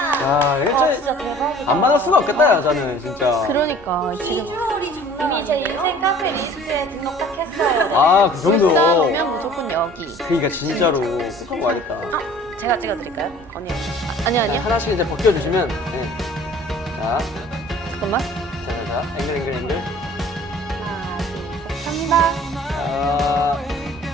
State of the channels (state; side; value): normal; both; correlation 0.49